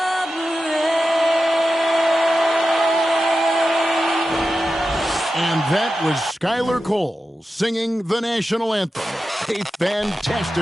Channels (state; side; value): normal; both; correlation 0.92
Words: And that was Skylar Cole singing the national anthem. A